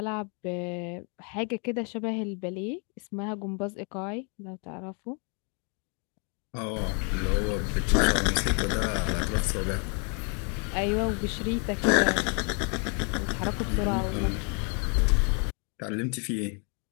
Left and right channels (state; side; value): quieter; right; 37.2 dB